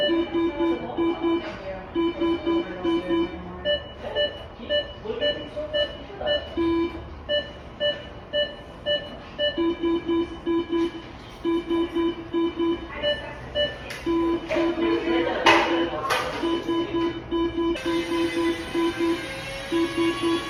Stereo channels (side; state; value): both; identical; correlation 1.00